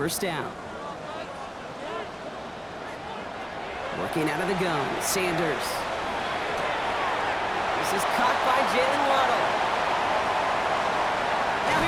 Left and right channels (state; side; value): identical; both; correlation 1.00